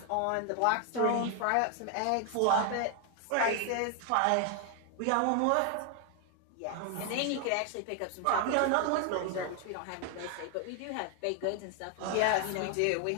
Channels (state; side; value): different; both; correlation 0.00